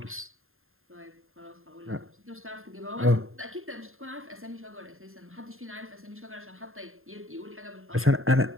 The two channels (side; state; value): left; late; 0.61 ms